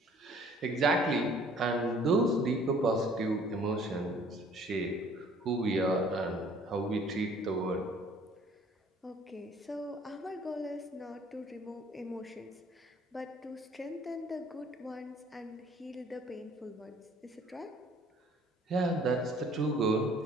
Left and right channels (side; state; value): both; normal; correlation 0.56